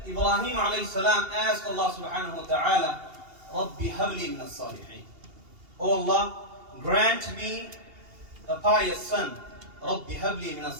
Ibrahim alayhi salam asked Allah subhanahu wa ta'ala, Rabbi habli min as-salihin, Oh Allah, grant me a pious son. Rabbi habli min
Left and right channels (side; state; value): left; late; 2.8 ms